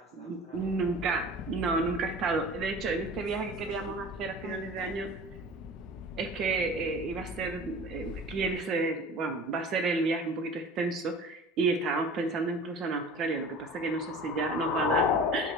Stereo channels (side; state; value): both; normal; correlation 0.40